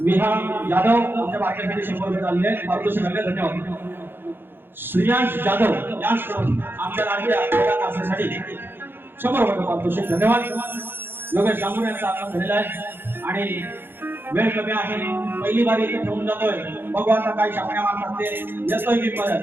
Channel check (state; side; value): late; left; 0.10 ms